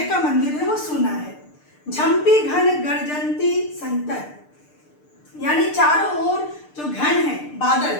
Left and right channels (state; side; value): late; right; 6.7 ms